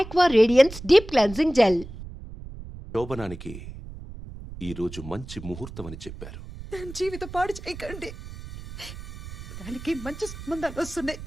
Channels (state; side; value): noise; right; rumble, 13 dB below the sound